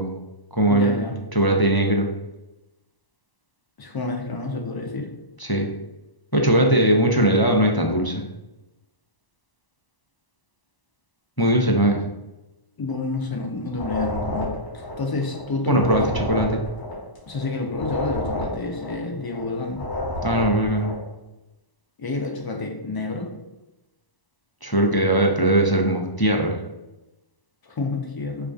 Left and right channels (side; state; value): right; late; 1.0 ms